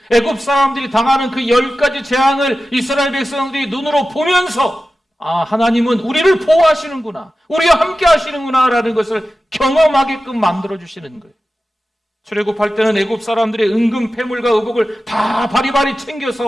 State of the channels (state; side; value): normal; both; correlation 0.94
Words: 애굽 사람들이 당하는 그 10가지 재앙을 이스라엘 백성들이 눈으로 보면서 하나님은 우리를 보호하시는구나, 우리와 함께 하시는구나 라는 것을 경험하게끔 만들어주시는 거예요. 출애굽할 때는 애굽 사람들의 은금, 패물과 의복을 다 바리바리